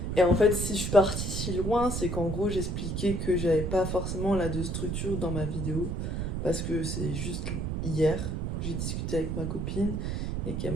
Et en fait, si je suis partie si loin, c'est qu'en gros, j'expliquais que j'avais pas forcément là de structure dans ma vidéo. Parce que c'est juste hier, j'ai discuté avec ma copine et qu'elle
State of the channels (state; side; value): noise; right; rumble, 2 dB below the sound